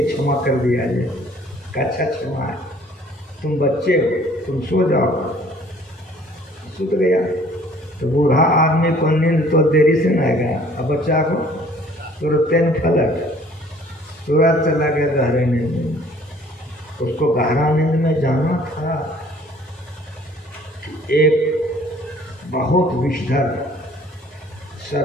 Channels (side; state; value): both; normal; correlation 0.55